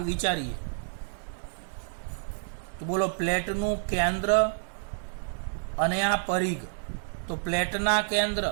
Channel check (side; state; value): left; silent; digital silence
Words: વિચારીએ. તો બોલો, પ્લેટનું કેન્દ્ર અને આ પરિઘ. તો પ્લેટના કેન્દ્ર,